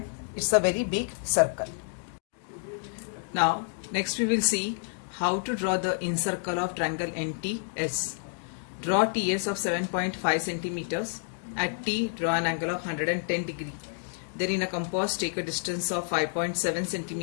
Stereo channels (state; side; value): silent; right; digital silence